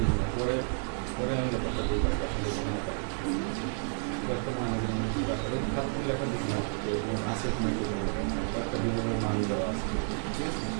না, পরে আমি ব্যাপারটা বুঝতে পারি আসলে লেখা দিয়েছিলাম আছে একটা বিভিন্ন মান দেওয়া আছে। ঠিক আছে,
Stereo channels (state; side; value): silent; left; 57 dB below the other